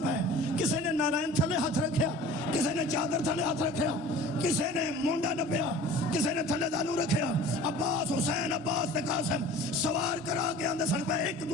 پے کسی نے نارائن تھلے ہاتھ رکھیا کسی نے چادر تھلے ہاتھ رکھیا کسی نے مونڈا نپیا کسی نے تھلے دانو رکھیا عباس حسین عباس تے قاسم سوار کرا کے آندے سن پے ایک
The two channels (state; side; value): normal; both; correlation 0.42